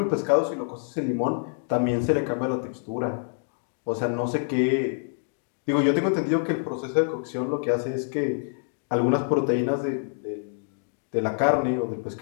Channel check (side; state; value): right; silent; digital silence